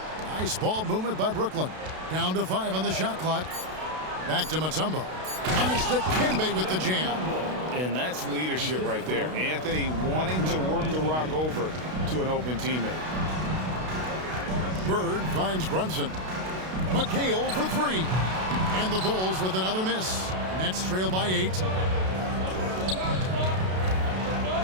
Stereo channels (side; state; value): left; late; 32 ms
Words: Nice ball movement by Brooklyn. Down to 5 on the shot clock. Back to Mutombo. And it's Dikembe with the jam. And that's leadership right there. Anthony wanting to work the rock over to an open teammate. Bird finds Brunson. McHale for 3. And the Bulls with another miss. Nets trail by 8.